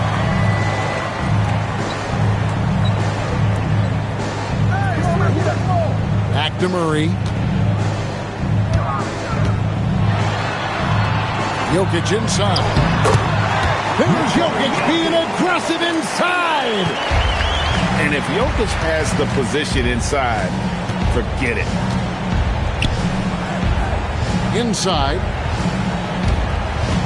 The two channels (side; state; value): both; identical; correlation 1.00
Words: Back to Murray. Jokic inside. Here's Jokic being aggressive inside. And if Jokic has the position inside, forget it. Inside.